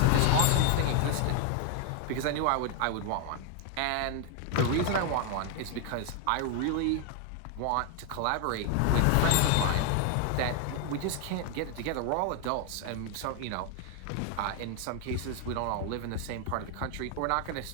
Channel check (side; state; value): both; different; correlation 0.00